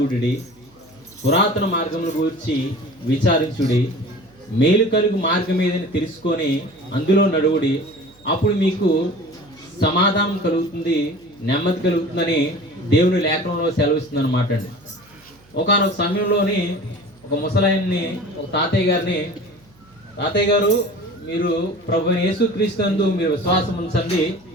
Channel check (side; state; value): right; noise; hum, 29 dB below the sound